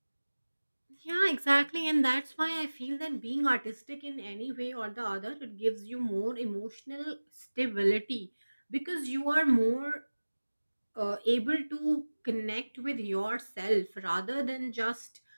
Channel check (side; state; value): both; inverted; correlation -1.00